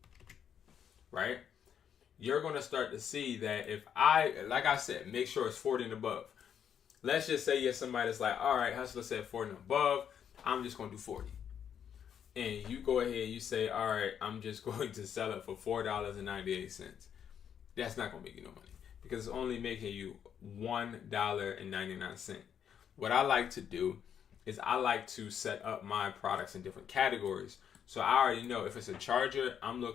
right? You're going to start to see that if like I said, make sure it's 40 and above. Let's just say you're somebody that's like, all right, Hustler said 40 and above, I'm just going to do 40. And you go ahead, you say, all right, I'm just going to sell it for $4.98. That's not going to make you no money because it's only making you $1.99. What I like to do is I like to set up my products in different categories. So I already know if it's a charger, I'm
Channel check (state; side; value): quieter; right; 8.5 dB